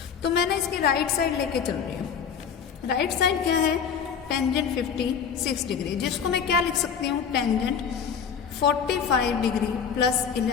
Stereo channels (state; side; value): quieter; right; 7.1 dB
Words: तो मैंने इसकी राइट साइड लेके चल रही हूँ। राइट साइड क्या है, टेंजेंट 56 डिग्री, जिसको मैं क्या लिख सकती हूँ, टेंजेंट 45 डिग्री प्लस